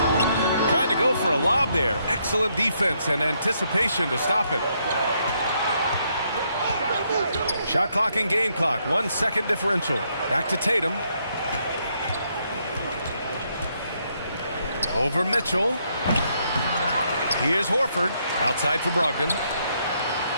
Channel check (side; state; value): both; inverted; correlation -0.74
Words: Trying to go for a lob there. Excellent defense and anticipation to stop it. Shot clock and game clock. 1 second differential. Back to Tatum. Over Mitchell. Here's Horford. Outside for Brogdon.